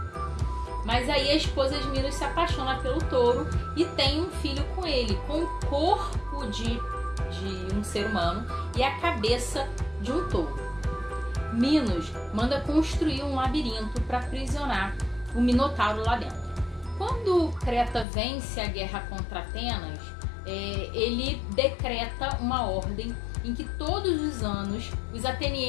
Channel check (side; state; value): right; drops out; at 18.1 s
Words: Mas aí a esposa de Minos se apaixona pelo touro e tem um filho com ele, com o corpo de um ser humano e a cabeça de um touro. Minos manda construir um labirinto para aprisionar o Minotauro lá dentro. Quando Creta vence a guerra contra Atenas, ele decreta uma ordem em que todos os anos os